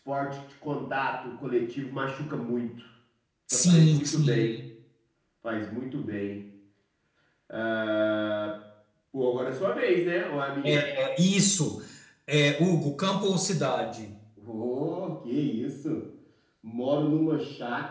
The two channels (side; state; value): both; identical; correlation 1.00